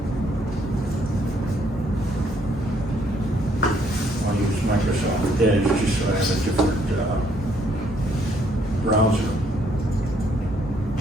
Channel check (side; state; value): both; normal; correlation 0.68